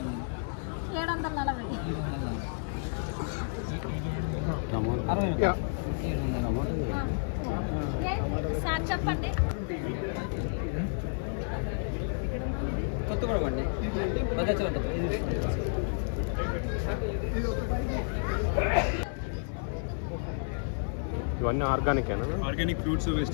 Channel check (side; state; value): right; silent; 57 dB below the other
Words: 740 సార్ చెప్పండి. కొత్త కూడా పండి భద్రాచలం ఇవన్నీ ఆర్గానికేనా? ఆర్గానిక్ ఫ్రూట్స్